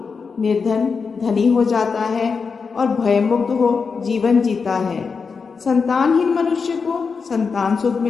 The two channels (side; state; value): right; quieter; 5.3 dB